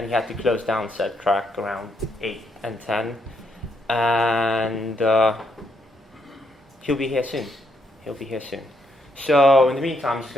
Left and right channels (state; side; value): normal; both; correlation 0.75